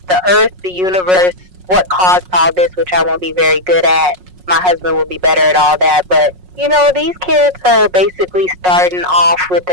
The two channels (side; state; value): left; late; 5.5 ms